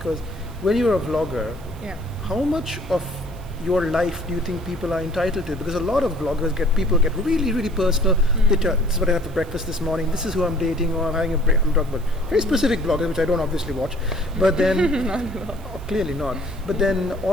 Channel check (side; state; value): right; noise; hiss, 25 dB below the sound